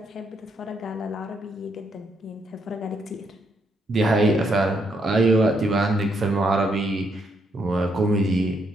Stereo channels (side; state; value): both; normal; correlation 0.75